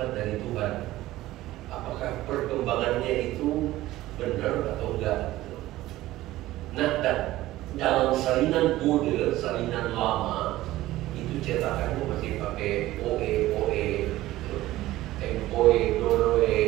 dari Tuhan. Apakah perkembangannya itu benar atau enggak? Nah, dalam salinan Bode, salinan lama, itu cetakannya masih pakai OE, tempoe, doroe.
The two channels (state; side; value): quieter; left; 16.2 dB